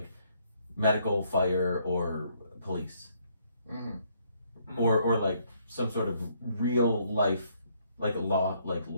medical, fire, or police, Mm-hmm. or some sort of real life like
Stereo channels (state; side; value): inverted; both; correlation -0.69